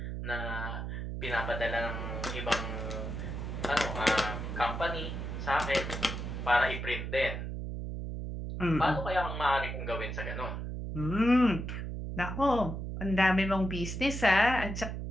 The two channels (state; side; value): noise; right; hum, 5 dB below the sound